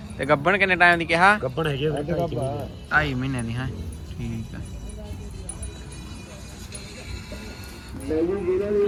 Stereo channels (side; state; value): both; identical; correlation 1.00